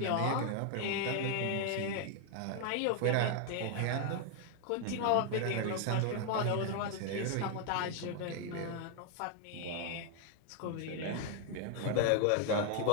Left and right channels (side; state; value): both; different; correlation 0.00